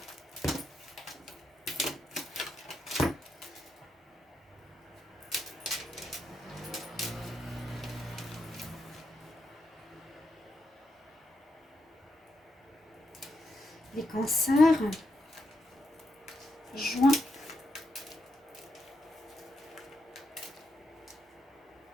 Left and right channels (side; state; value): both; normal; correlation 0.82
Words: Les cancers, juin.